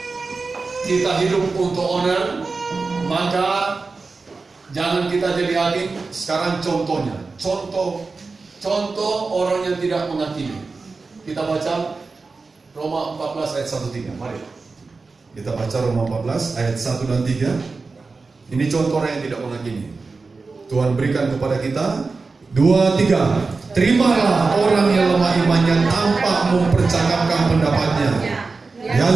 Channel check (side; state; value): left; quieter; 4.1 dB